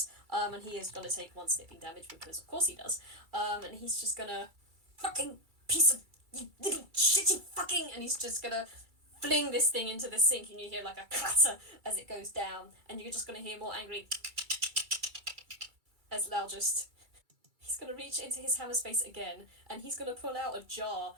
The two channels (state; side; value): late; left; 2.3 ms